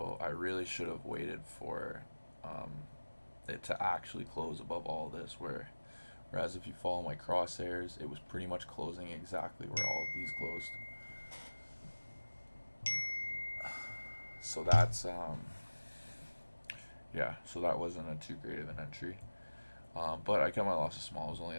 I really should have waited for it to actually close above all this, whereas if you follow my crosshairs, it was pretty much closing exactly where all of these closed. So that's yeah, so that wasn't a too great of an entry, but I kept my losses small. It was only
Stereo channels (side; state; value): both; inverted; correlation -1.00